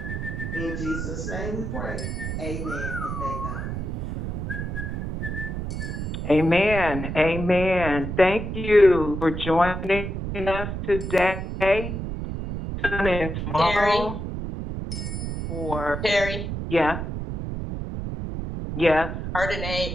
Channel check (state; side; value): noise; right; rumble, 4 dB below the sound